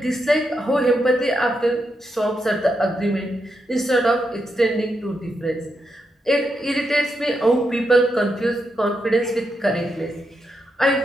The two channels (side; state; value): both; normal; correlation 0.83